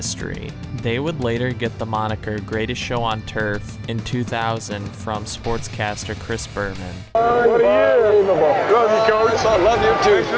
They would later get the moniker Greatest Show on Turf in 2000 from sportscaster Chris Berman. What a year! Love you, Coach. I love you too. Thanks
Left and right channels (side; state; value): both; identical; correlation 1.00